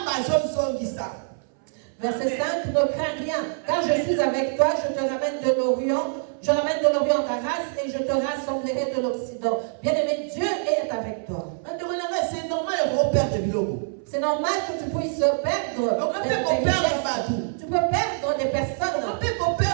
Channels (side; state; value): left; silent; 62 dB below the other